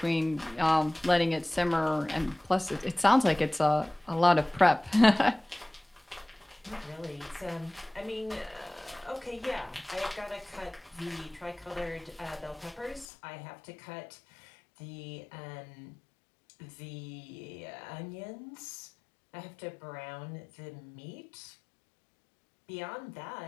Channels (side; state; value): right; drops out; at 13.1 s